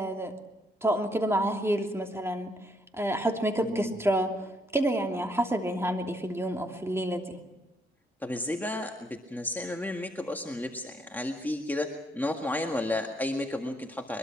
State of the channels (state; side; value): normal; both; correlation 0.72